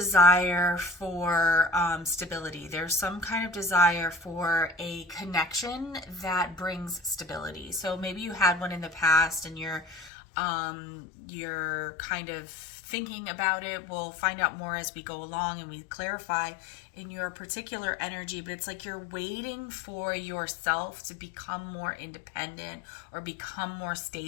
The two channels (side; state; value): right; drops out; at 10.1 s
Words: for stability. There's some kind of desire for a connection that brings stability. So maybe you had one in the past, and you're kind of thinking about it. We'll find out more as we go along and we clarify in your particular energy, but it's like you're waiting for yourself to become more independent or become more